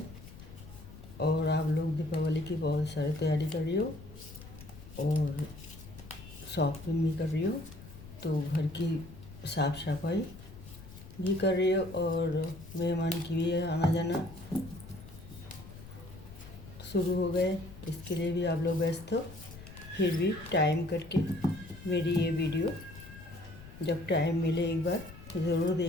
और आप लोग दीपावली की बहुत सारी तैयारी कर रही हो और शॉपिंग भी कर रही हो, तो घर की साफ़ सफाई भी कर रही हो और मेहमान की भी आना जाना शुरू हो गए। इसके लिए भी आप लोग व्यस्त हो, फिर भी टाइम करके मेरी ये वीडियो जब टाइम मिले एक बार ज़रूर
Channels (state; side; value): noise; left; rumble, 16 dB below the sound